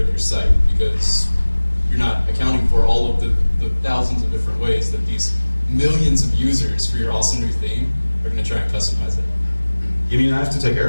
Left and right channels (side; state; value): both; inverted; correlation -1.00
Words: your site because you're not accounting for all of the thousands of different ways that these millions of users for your awesome new theme are going to try and customize it. You mean I have to take care